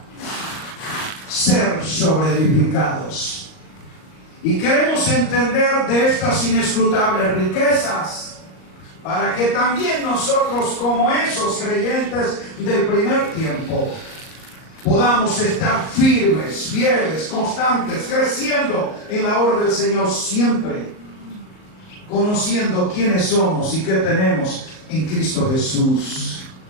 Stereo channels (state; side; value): late; right; 38 ms